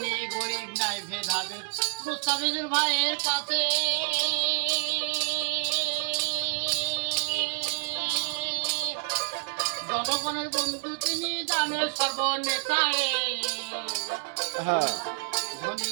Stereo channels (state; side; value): silent; left; 56 dB below the other